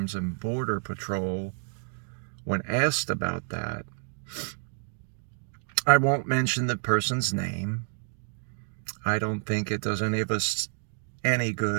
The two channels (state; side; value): silent; left; 55 dB below the other